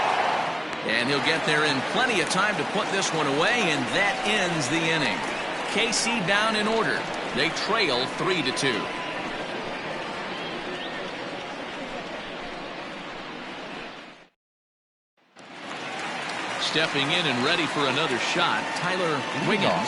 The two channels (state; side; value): identical; both; correlation 1.00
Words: And he'll get there in plenty of time to put this one away, and that ends the inning. KC down in order. They trail 3-2. Stepping in and ready for another shot, Tyler Wiggins.